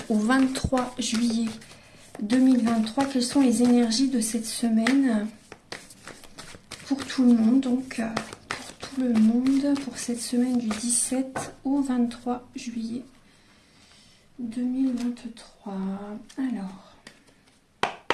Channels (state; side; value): identical; both; correlation 1.00